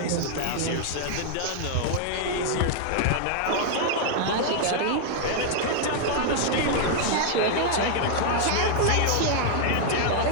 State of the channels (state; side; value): different; both; correlation 0.00